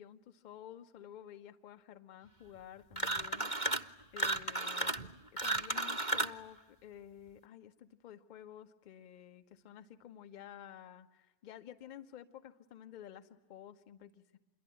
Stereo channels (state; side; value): late; right; 2.1 ms